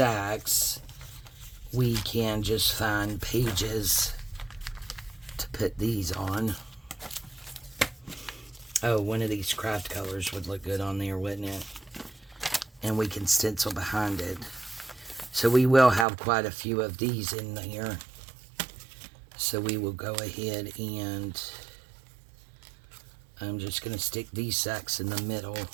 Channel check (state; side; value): drops out; left; at 16.1 s